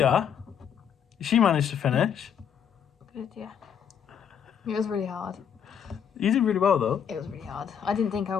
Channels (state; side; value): quieter; right; 8.1 dB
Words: she managed to finish. Good, yeah. It was really hard. You did really well though. It was really hard. I didn't think I